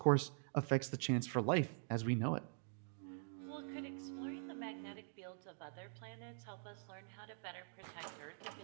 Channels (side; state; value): left; silent; digital silence